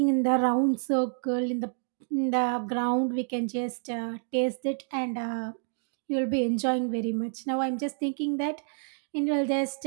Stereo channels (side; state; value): left; silent; 59 dB below the other